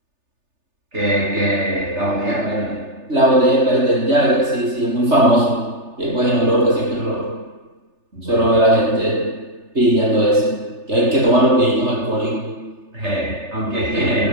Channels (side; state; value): left; late; 3.3 ms